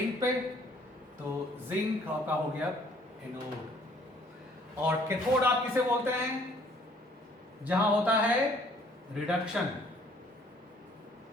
पे, तो जिंक आपका हो गया एनोड। और कैथोड आप किसे बोलते हैं? जहां होता है रिडक्शन।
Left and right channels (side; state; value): both; normal; correlation 0.60